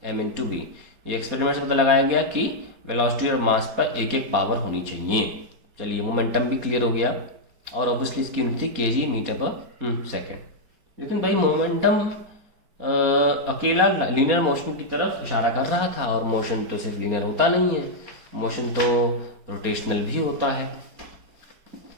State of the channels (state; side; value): late; left; 4.2 ms